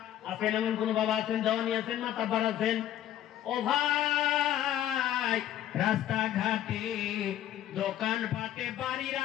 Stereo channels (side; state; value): right; quieter; 11.8 dB